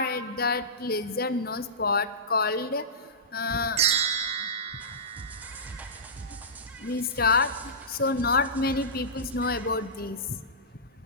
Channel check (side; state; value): both; normal; correlation -0.18